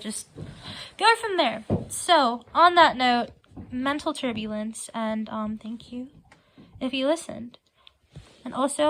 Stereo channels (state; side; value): identical; both; correlation 1.00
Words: go from there. So on that note, mental turbulence, and thank you if you listened. And